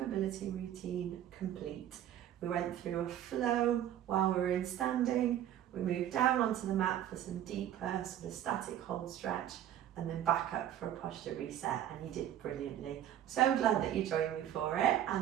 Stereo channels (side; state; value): left; quieter; 11.2 dB